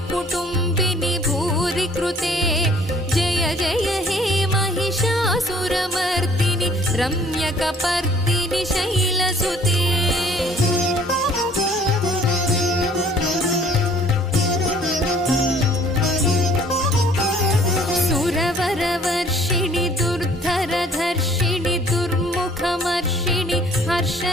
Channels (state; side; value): normal; both; correlation 0.56